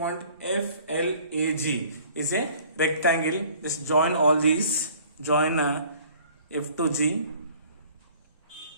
FLAG is a rectangle. Just join all these. Join F to G.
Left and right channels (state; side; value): inverted; both; correlation -0.52